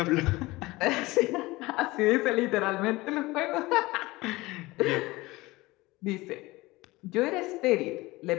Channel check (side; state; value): right; quieter; 20.7 dB